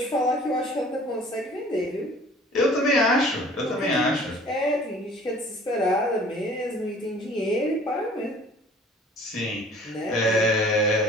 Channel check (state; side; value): normal; both; correlation 0.50